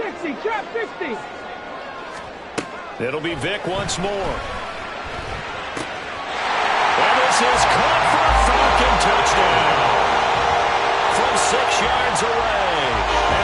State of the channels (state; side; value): identical; both; correlation 1.00